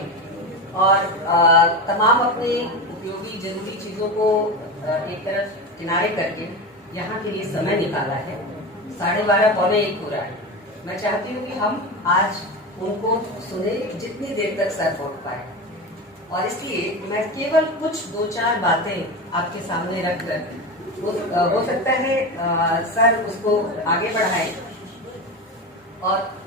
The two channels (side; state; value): both; normal; correlation 0.22